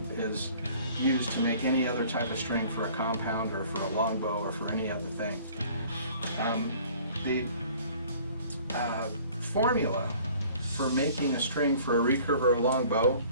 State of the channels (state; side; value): inverted; both; correlation -0.52